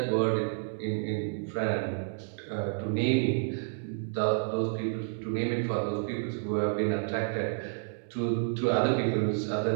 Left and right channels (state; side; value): silent; left; digital silence